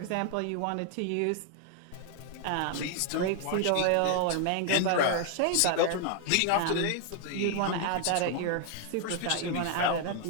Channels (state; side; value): different; both; correlation 0.00